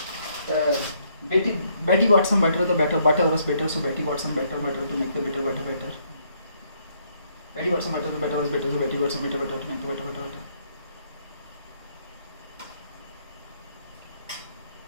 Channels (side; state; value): both; inverted; correlation -0.71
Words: Betty got some butter, the butter was better, so Betty got some butter to make the butter better. Betty got some butter, the butter was better, so Betty got some butter to make the butter better.